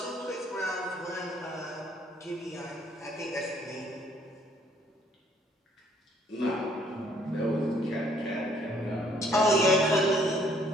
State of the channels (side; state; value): both; normal; correlation 0.63